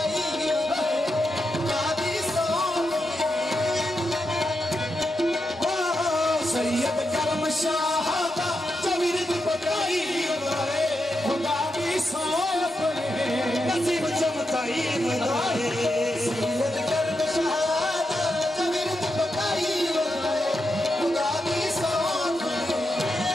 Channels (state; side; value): normal; both; correlation 0.86